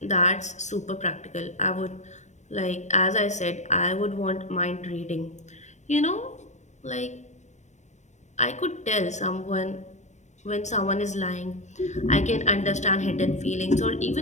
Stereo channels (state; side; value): late; right; 0.34 ms